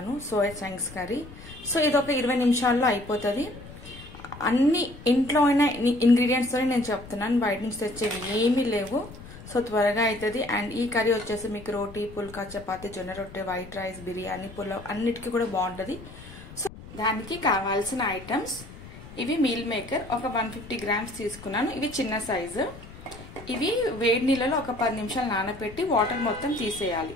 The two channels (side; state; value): left; noise; rumble, 16 dB below the sound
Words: సోయా చంక్స్ కర్రీ. సో ఇది ఒక 20 నిమిషాల్లో అయిపోతుంది. అన్ని ఇంట్లో అయిన ఇంగ్రీడియంట్స్ తోనే నేను చెప్తున్నాను, బయట నుంచి తెచ్చేవి ఏమీ లేవు. సో త్వరగా అవుతుంది. అండ్ ఈ కర్రీ వచ్చేసి మీకు రోటీ, పుల్కా, చపాతీ, జొన్న రొట్టె, వైట్ రైస్, బిర్యానీ, పులావ్ అన్నిటికీ కూడా బాగుంటుంది. సో దానికి కావాల్సిన ఐటమ్స్ ఇవి. మీల్ మేకర్ ఒక 150 గ్రామ్స్ తీసుకున్నాను. ఇవి చిన్న సైజు. ఇవి వేడి నీళ్ళలో ఒక 10 నిమిషాలు నానబెట్టి వాటర్ మొత్తం తీసేయాలి.